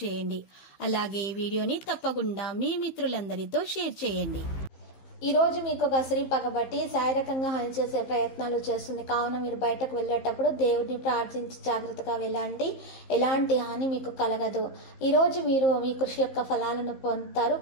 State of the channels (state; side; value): late; right; 15 ms